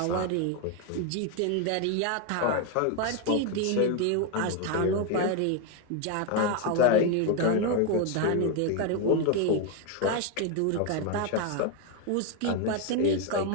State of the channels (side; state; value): both; different; correlation 0.01